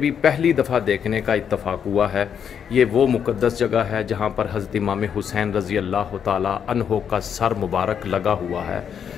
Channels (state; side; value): quieter; right; 7.9 dB